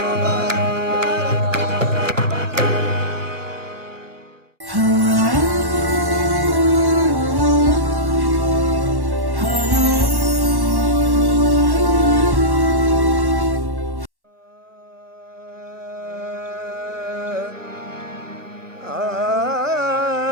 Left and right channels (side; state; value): left; late; 1.1 ms